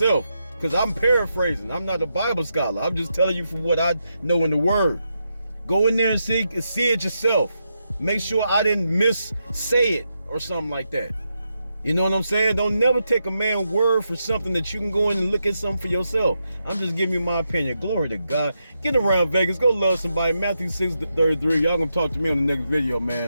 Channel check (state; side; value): inverted; both; correlation -0.85